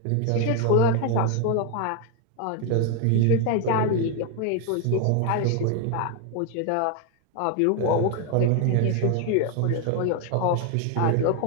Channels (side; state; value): both; different; correlation 0.01